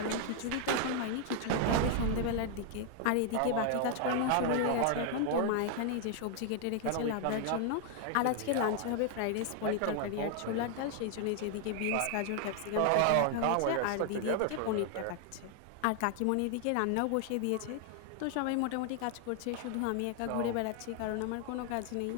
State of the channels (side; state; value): both; different; correlation 0.00